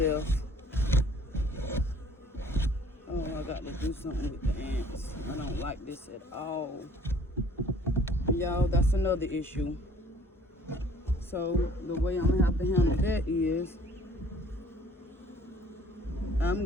Oh, I got to do something with the ants. I don't like this at all. Y'all, that's another issue. So the way I'm gonna have to handle that is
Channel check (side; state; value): both; normal; correlation 0.56